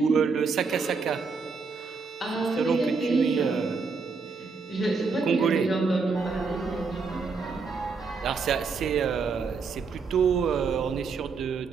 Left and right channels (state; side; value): quieter; left; 4.7 dB